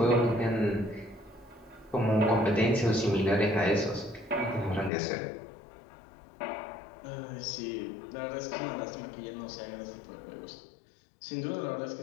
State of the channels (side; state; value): right; drops out; at 4.9 s